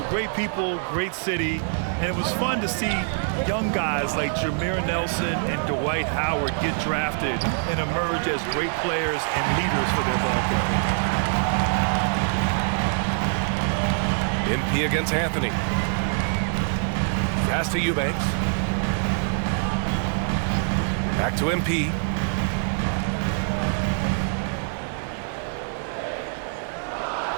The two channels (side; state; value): left; silent; 62 dB below the other